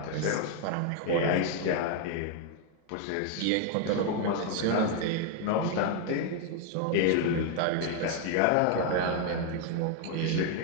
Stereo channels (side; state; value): both; different; correlation 0.00